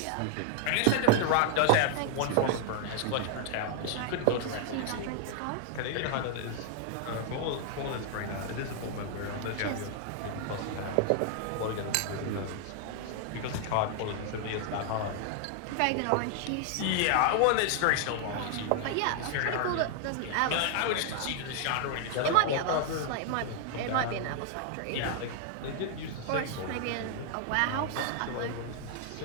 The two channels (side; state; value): both; different; correlation 0.00